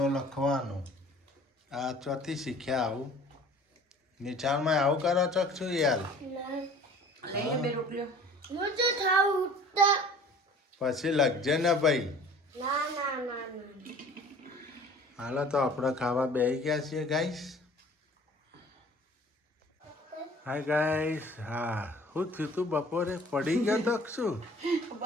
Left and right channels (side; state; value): both; normal; correlation 0.48